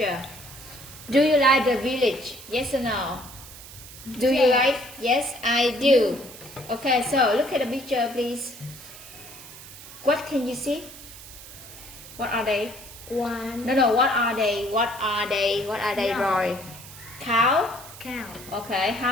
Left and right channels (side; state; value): right; noise; hiss, 16 dB below the sound